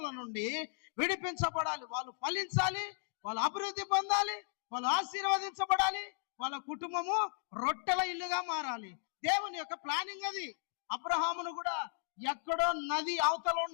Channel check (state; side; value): silent; right; digital silence